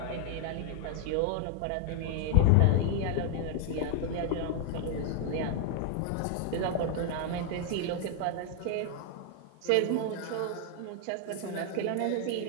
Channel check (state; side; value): different; both; correlation 0.00